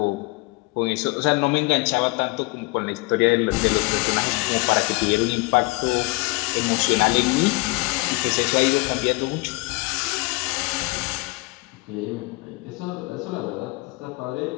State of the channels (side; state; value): right; quieter; 26.0 dB